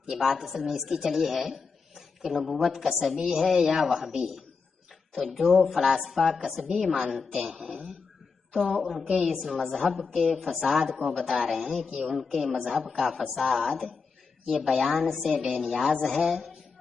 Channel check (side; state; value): right; quieter; 5.0 dB